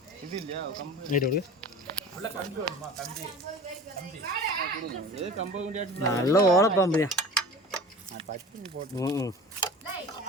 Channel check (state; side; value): normal; both; correlation 0.38